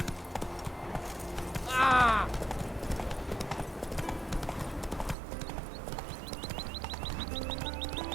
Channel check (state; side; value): drops out; left; at 5.2 s